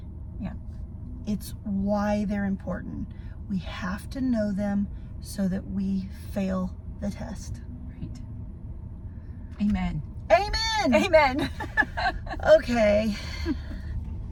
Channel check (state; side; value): identical; both; correlation 1.00